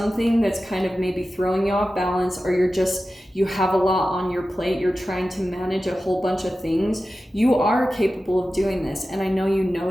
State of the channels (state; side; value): normal; both; correlation 0.94